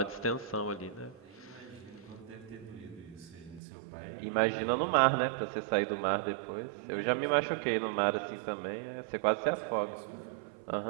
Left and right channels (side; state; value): left; drops out; at 3.6 s